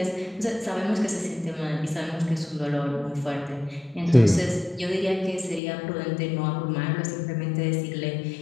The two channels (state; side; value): drops out; right; at 5.6 s